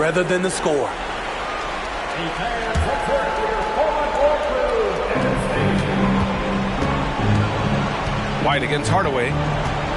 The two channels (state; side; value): identical; both; correlation 1.00